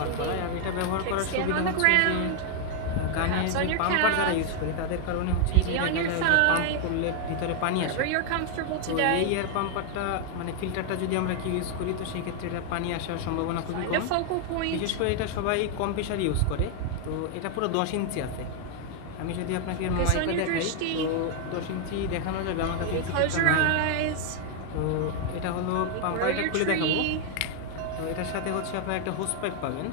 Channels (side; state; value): both; different; correlation 0.00